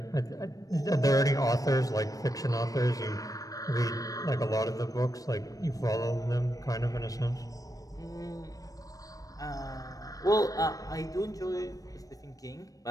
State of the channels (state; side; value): late; right; 0.17 ms